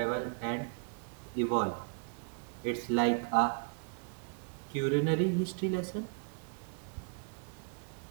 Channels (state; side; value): quieter; left; 37.7 dB